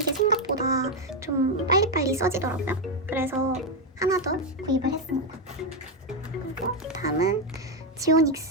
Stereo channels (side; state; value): both; normal; correlation 0.05